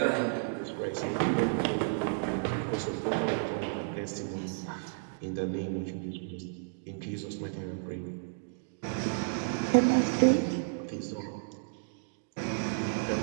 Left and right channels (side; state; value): left; silent; digital silence